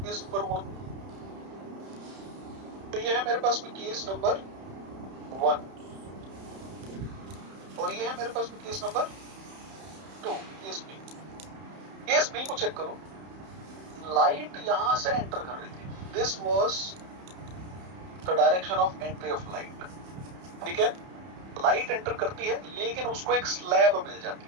नंबर 1। तो ये है मेरे पास में केस नंबर 1 और ये है मेरे पास में case number 2, case B. Case B को चेक करो, लाइट यहां से एंटर कर रही थी, this was the direction of entry of light, ठीक है। लाइट एंटर करती है लेकिन उसको एक स्लैब मिल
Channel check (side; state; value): left; late; 31 ms